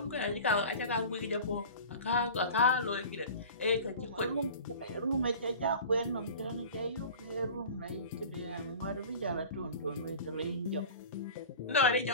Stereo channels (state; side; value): inverted; both; correlation -0.38